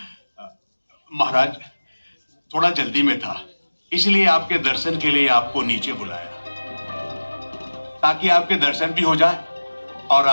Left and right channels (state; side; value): inverted; both; correlation -1.00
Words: महाराज, थोड़ा जल्दी में था, इसलिए आपके दर्शन के लिए आपको नीचे बुलाया, ताकि आपके दर्शन भी हो जाए और